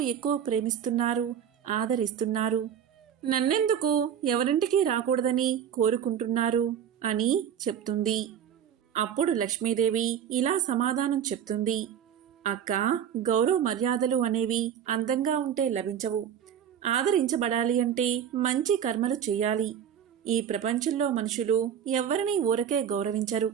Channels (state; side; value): quieter; left; 8.9 dB